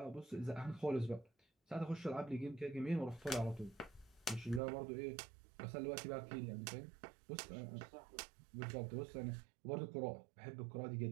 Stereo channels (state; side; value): drops out; left; at 4.6 s